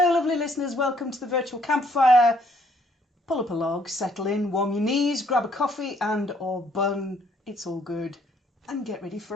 lovely listeners. Welcome to the virtual campfire. Pull up a log, settle in, warm your knees, grab a coffee and or bun. It's all good. And get ready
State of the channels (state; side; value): normal; both; correlation 0.66